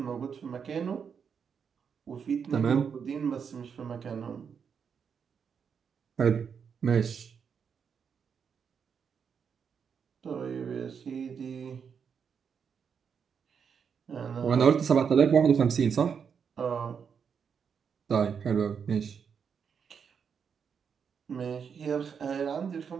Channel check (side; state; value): left; quieter; 6.8 dB